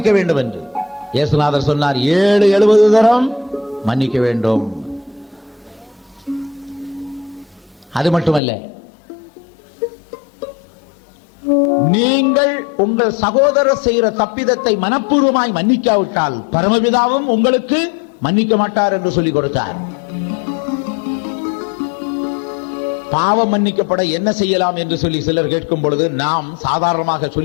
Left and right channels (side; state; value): right; drops out; at 8.4 s